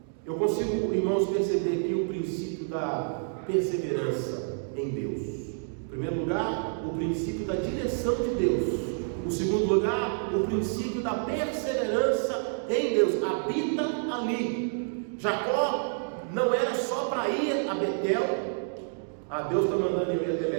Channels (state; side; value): silent; left; digital silence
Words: Eu consigo, irmãos, perceber aqui o princípio da perseverança em Deus. Em primeiro lugar, o princípio da direção de Deus. Em segundo lugar, o princípio da perseverança em Deus. Habita ali. Jacó não era só para ir a Betel. Deus está mandando eu ir até